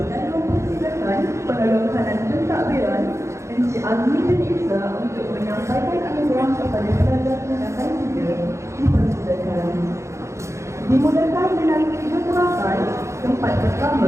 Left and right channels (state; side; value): late; left; 0.14 ms